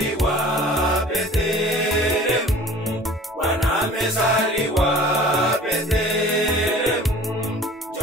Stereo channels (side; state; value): both; normal; correlation 0.45